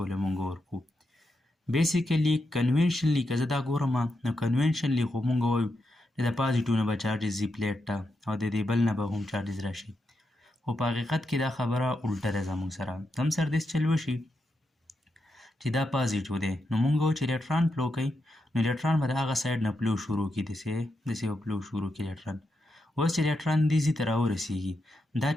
له موږ ورکو بیسیکلي کنوینشنلی که زه دا ګورم نو کنوینشنلی خو موږ وایو چې د پازیټیو نه به چارجز ځي پلیټ ته او د دې بل نه به هم چارجز راشي خو په حقیقت کې دا خبره الټه ده زموږ سره زم سره داسې چل وشي چې دا پازیټیو دی نو موږ وایو چې الکتران فلو کوي نو الکتران به د هغه سایډ نه فلو شروع کړي داسې به فلو شروع کړي الکتران اوس چې الکتران دې ځي ته راورسېږي دا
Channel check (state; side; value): normal; both; correlation 0.85